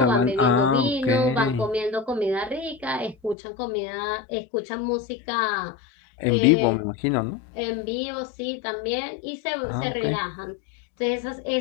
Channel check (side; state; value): right; drops out; at 3.4 s